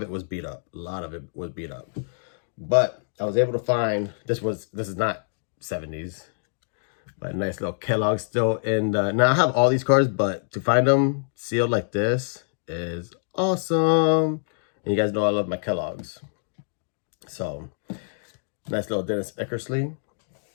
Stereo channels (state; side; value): silent; right; digital silence